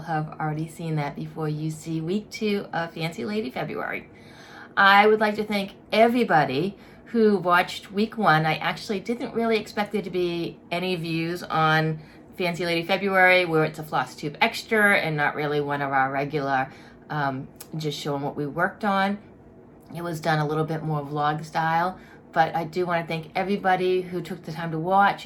have already seen that before you see week 2 of Fancy Lady February. I would like to thank everybody who watched week 1. I actually didn't really expect there to be any views on Fancy Lady February, where it's a Flosstube extra and not really one of our regular, just showing what we worked on. It was done a little bit more vlog style, but I do want to thank everybody who took the time to watch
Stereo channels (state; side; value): identical; both; correlation 1.00